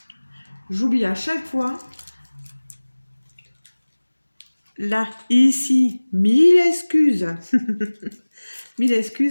J'oublie à chaque fois. Là, ici, 1000 excuses. 1000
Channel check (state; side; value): inverted; both; correlation -1.00